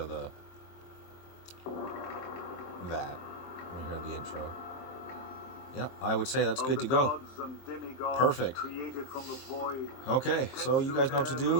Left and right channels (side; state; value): right; late; 23 ms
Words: the that. We hear the intro. Yeah, I would say that's good to go. Perfect. Okay, so you guys know what to